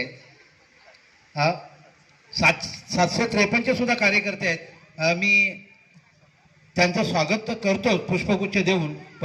753चे सुद्धा कार्यकर्ते आहेत. मी त्यांचं स्वागत तर करतो पुष्पगुच्छ देऊन,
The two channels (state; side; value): identical; both; correlation 1.00